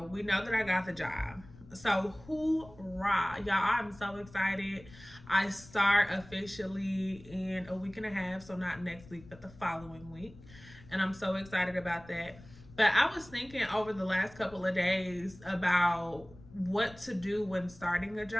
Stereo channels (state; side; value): noise; left; rumble, 21 dB below the sound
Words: we know that I got the job. So hoorah, y'all! I'm so excited. I start officially in a week and a half, so not next week, but the following week, and I'm so excited about that. But I was thinking over the last couple of days about what to do when starting a